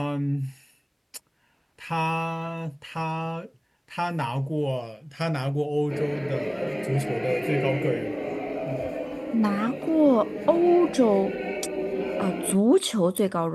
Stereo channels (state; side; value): identical; both; correlation 1.00